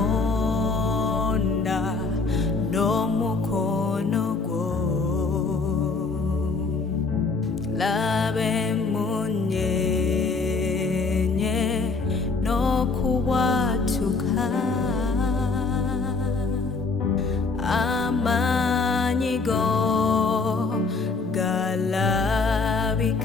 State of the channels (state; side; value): quieter; right; 4.2 dB